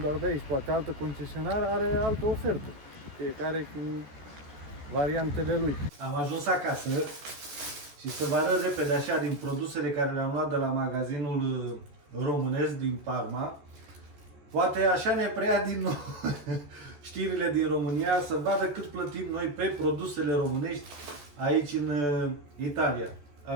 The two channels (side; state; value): left; late; 14 ms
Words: de aici, poate altă concesionară are altă ofertă, fiecare cu variantele lui. Am ajuns acasă și să vă arăt repede așa din produsele care le-am luat de la magazinul românesc din Parma. Poate așa ne preia din nou știrile din România, să vadă cât plătim noi pe produsele românești aici în Italia.